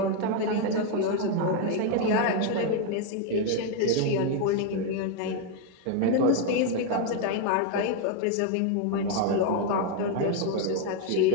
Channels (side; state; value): both; different; correlation 0.01